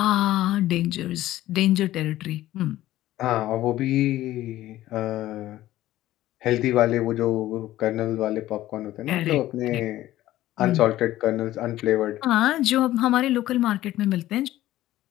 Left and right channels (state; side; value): quieter; right; 14.8 dB